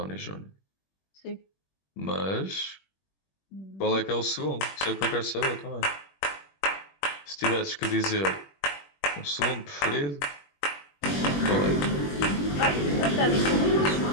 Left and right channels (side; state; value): right; late; 21 ms